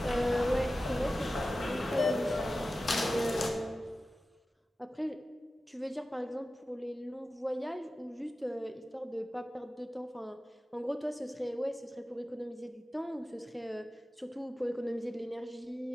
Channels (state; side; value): normal; both; correlation 0.94